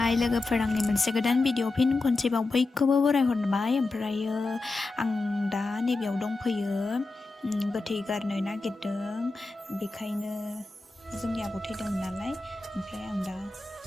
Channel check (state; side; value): quieter; right; 3.4 dB